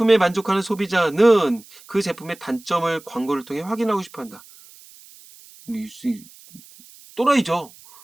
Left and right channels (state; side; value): noise; right; hiss, 23 dB below the sound